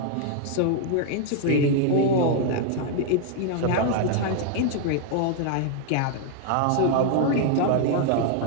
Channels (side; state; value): both; different; correlation 0.00